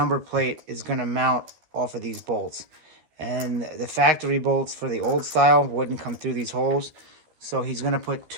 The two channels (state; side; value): late; left; 13 ms